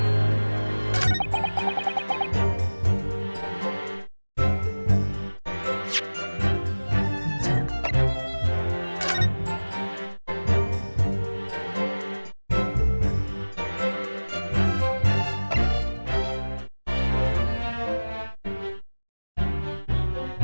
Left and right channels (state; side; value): inverted; both; correlation -1.00